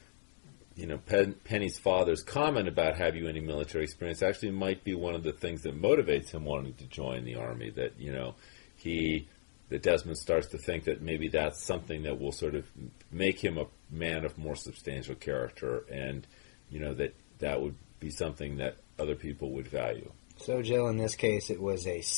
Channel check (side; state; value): right; silent; digital silence